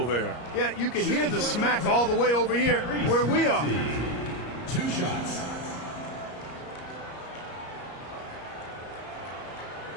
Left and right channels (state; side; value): late; right; 34 ms